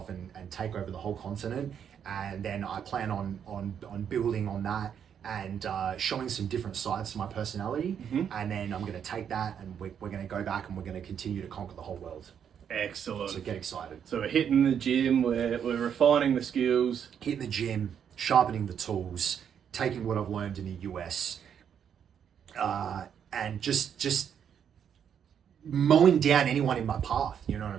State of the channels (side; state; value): left; quieter; 8.3 dB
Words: and take over the whole continent. And then I plan on building on that and showing some different sides to my personality. Mm-hmm. And then I'm going to take that and we're going to go back and we're going to continue to conquer the whole world. Excellent. So get excited. So we're hitting the gym, we're refining the skills. Hitting the gym, sharpening the tools, taking what I've learned in the US, and just mowing down anyone in my path, you know what I